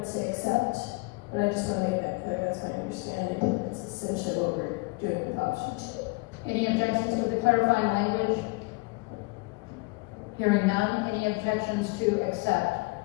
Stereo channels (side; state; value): right; quieter; 26.2 dB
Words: say accept, but I just want to make that clear, that's my understanding. It's essentially what we're doing with option 2. Any objections to the clarifying language? Hearing none. Any objections to accept?